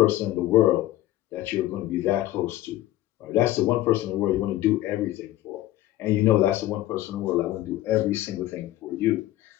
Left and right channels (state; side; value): quieter; right; 15.3 dB